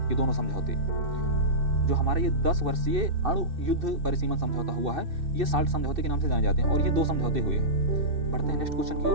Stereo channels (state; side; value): late; left; 2.6 ms